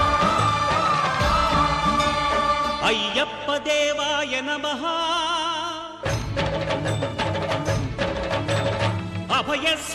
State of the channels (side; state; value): both; identical; correlation 1.00